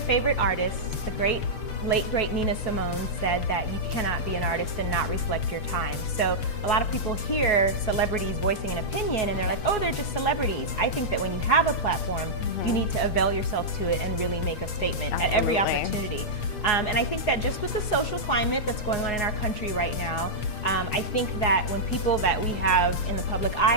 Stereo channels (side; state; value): right; late; 6.7 ms